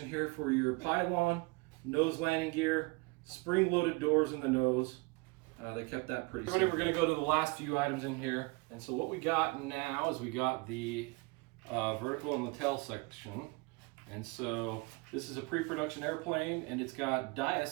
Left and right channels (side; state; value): left; quieter; 27.1 dB